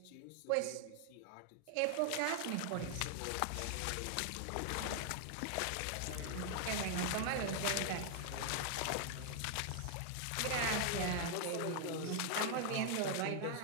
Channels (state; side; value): different; both; correlation 0.00